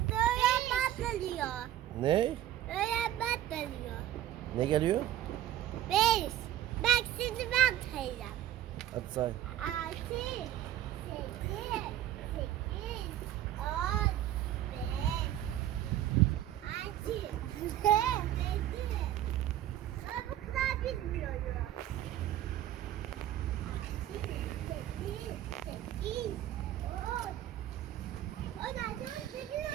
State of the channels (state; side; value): quieter; left; 12.4 dB